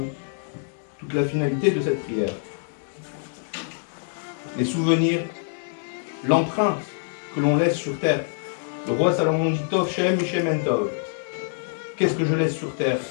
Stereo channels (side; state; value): right; silent; digital silence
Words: toute la finalité de cette prière. Les souvenirs, l'empreinte que l'on laisse sur terre. Le roi Salomon dit Tov Shem Mishem En Tov. Qu'est-ce que je laisse sur terre?